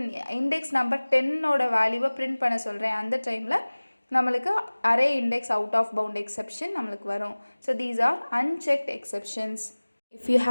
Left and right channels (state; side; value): inverted; both; correlation -1.00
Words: இண்டெக்ஸ் நம்பர் 10ஓட வேல்யூவை பிரிண்ட் பண்ண சொல்கிறேன். அந்த டைமில் நம்மளுக்கு array index out of bound exception நம்மளுக்கு வரும். So these are unchecked exceptions. If you